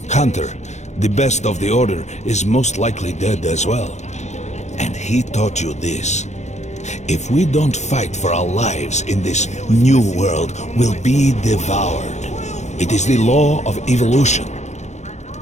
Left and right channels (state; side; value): late; right; 0.33 ms